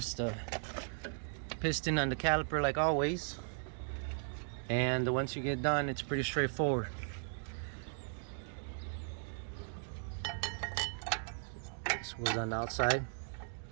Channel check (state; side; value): silent; left; digital silence